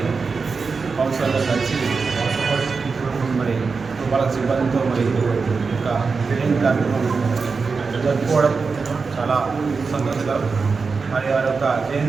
కౌన్సిలర్తో కలిసి మరి వాళ్ళ సిబ్బందితో మరి యొక్క జయంతి కార్యక్రమం జరుపుకోవడం చాలా సంతోషకరం. మరి వారి యొక్క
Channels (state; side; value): quieter; left; 4.8 dB